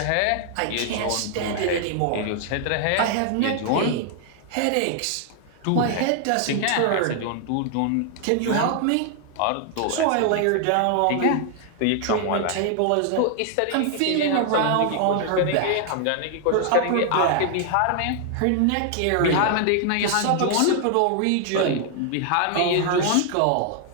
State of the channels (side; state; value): both; different; correlation 0.00